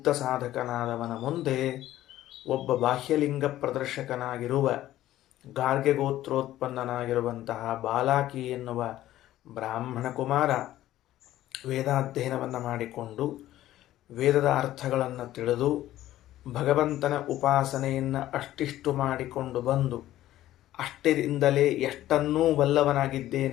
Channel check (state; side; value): quieter; right; 14.1 dB